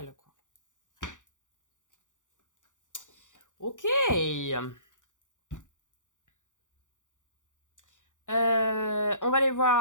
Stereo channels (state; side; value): late; right; 0.86 ms